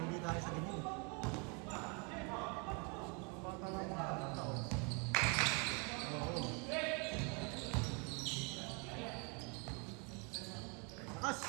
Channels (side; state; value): left; quieter; 33.6 dB